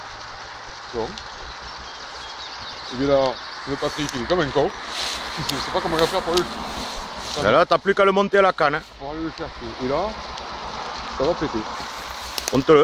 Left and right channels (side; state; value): both; identical; correlation 1.00